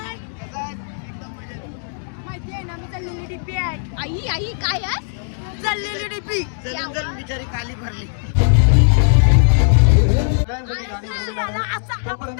माहिती आहे ना, मी चाललेली डीपी आहे. आई आई काय आहे? चाललेली डीपी. चल बिचारी काली भरली.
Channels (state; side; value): silent; right; digital silence